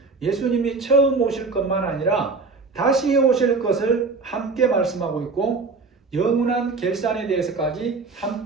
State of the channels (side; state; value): left; quieter; 4.1 dB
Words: 예수님이 처음 오실 것만 아니라 다시 오실 것을 함께 말씀하고 있고 영원한 결산에 대해서까지